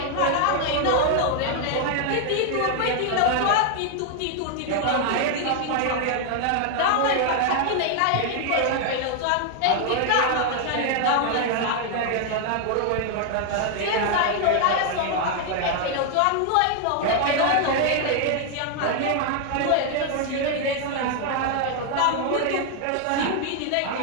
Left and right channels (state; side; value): different; both; correlation 0.00